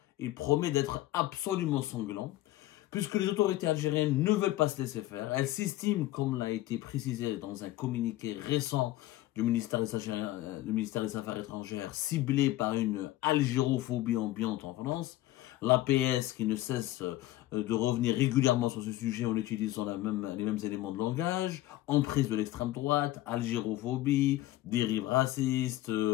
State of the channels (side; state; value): right; quieter; 15.7 dB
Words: il promet d'être absolument sanglant, puisque les autorités algériennes ne veulent pas se laisser faire. Elles s'estiment, comme l'a été précisé dans un communiqué récent du ministère des Affaires étrangères, ciblées par une algérophobie ambiante en France. L'APS qui ne cesse de revenir régulièrement sur ce sujet en utilisant les mêmes éléments de langage, emprise de l'extrême droite, algérophobie, dérive raciste